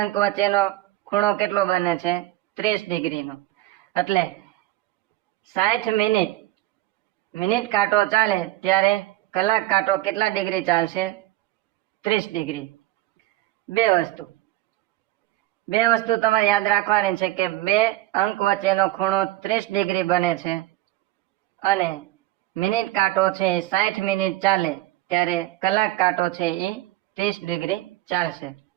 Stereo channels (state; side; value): quieter; left; 16.4 dB